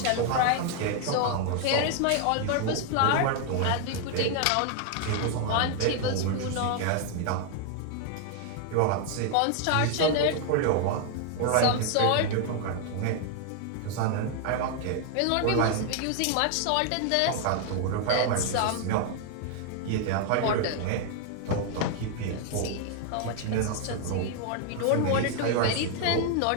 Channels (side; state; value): both; different; correlation 0.00